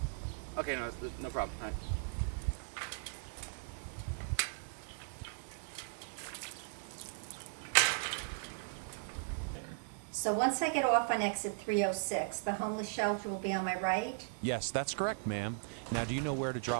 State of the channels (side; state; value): left; silent; digital silence